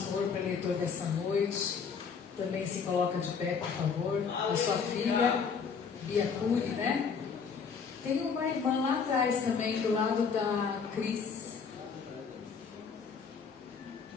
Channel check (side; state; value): right; quieter; 5.9 dB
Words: preletor dessa noite, também se coloca de pé, por favor. A sua filha, Bia Cury, né? Tem uma irmã lá atrás também, do lado da Cris.